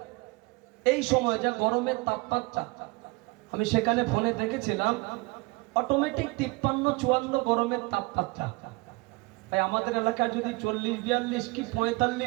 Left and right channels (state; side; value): quieter; left; 25.6 dB